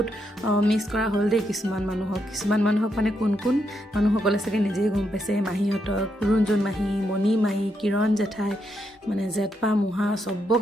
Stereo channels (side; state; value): both; normal; correlation 0.80